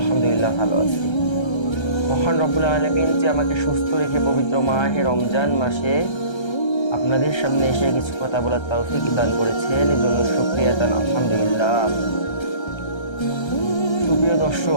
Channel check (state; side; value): late; right; 1.3 ms